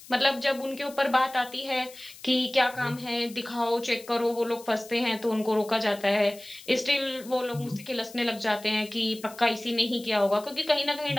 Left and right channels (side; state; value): left; noise; hiss, 19 dB below the sound